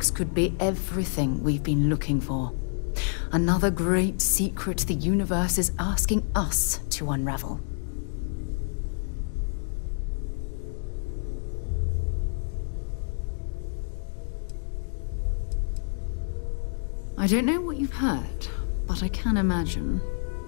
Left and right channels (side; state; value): right; silent; digital silence